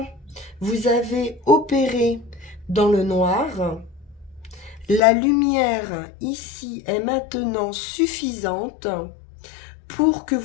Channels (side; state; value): right; drops out; at 5.0 s